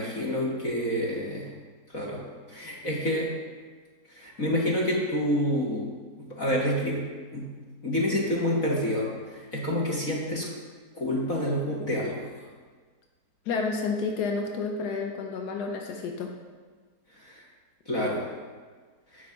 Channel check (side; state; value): right; late; 4.1 ms